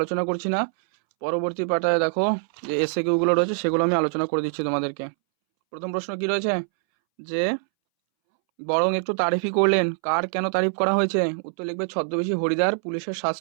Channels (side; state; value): left; silent; 63 dB below the other